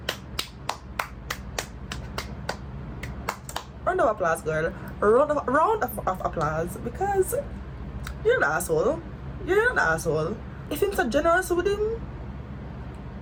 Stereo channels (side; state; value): both; identical; correlation 1.00